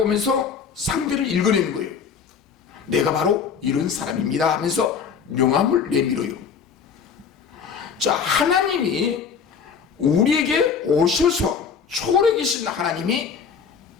상대를 읽어내는 거예요. 내가 바로 이런 사람입니다 하면서 명함을 내밀어요. 자, 하나님이 우리에게 오셔서, 초월에 계신 하나님이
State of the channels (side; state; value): right; quieter; 6.5 dB